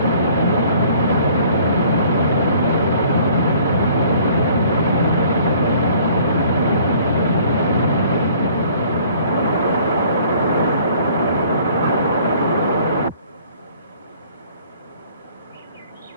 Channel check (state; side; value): inverted; both; correlation -0.56